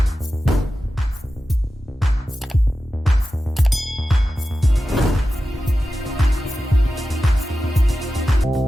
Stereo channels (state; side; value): normal; both; correlation 0.93